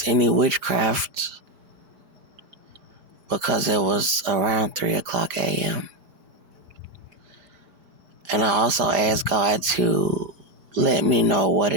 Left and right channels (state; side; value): late; left; 5.0 ms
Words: any witchcraft because it was around 3 o'clock a.m. And I also asked God to let me know what